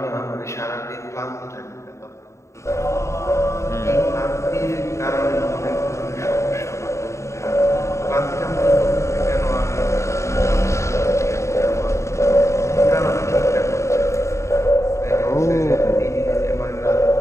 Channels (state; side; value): late; right; 0.14 ms